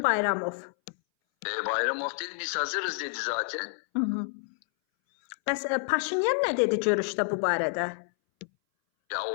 Bayramov. Bayramov dedi biz hazırız dedi zaten. Bəs Paşinyan nə dedi görüşdə bu barədə? Ya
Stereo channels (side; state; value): right; silent; 59 dB below the other